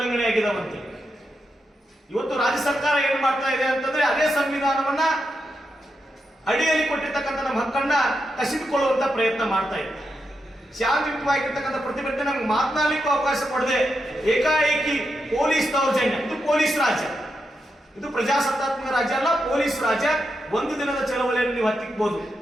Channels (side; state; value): both; normal; correlation 0.85